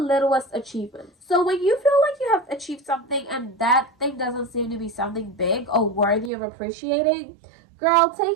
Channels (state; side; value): drops out; left; at 6.3 s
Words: achievements. So when you feel like you have achieved something and that thing doesn't seem to be something big or worthy of appreciating, girl,